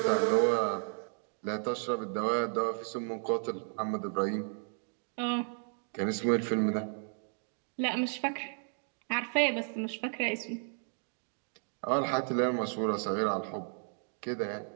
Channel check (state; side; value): silent; left; 55 dB below the other